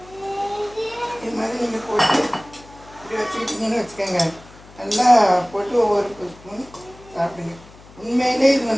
மாதிரி நீங்கள் போட்டு இப்படி வச்சுக்கிட்டிங்கன்னு வச்சுக்கோங்க. நல்லா போட்டு ஒவ்வொரு ஸ்பூன் சாப்பிடுங்க. உண்மையிலே இது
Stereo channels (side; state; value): left; noise; hum, 22 dB below the sound